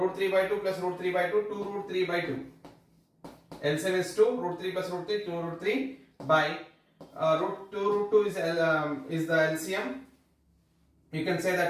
3 by 2 plus root 3 by 2, 2 root 3 by 2. LCM is 2, root 3 plus root 3, 2 root 3 by root 2 is the LCM. You can say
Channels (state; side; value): identical; both; correlation 1.00